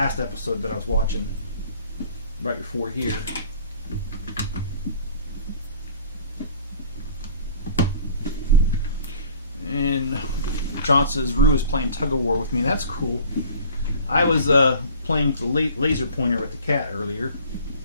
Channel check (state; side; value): inverted; both; correlation -0.48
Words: episode that I was watching right before here. And John says Rue is playing tug of war with me. That's cool. I was playing with the laser pointer with the cat earlier.